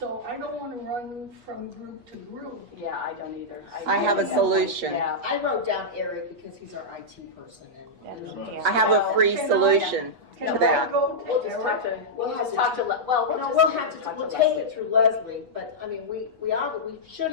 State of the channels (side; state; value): left; late; 8.2 ms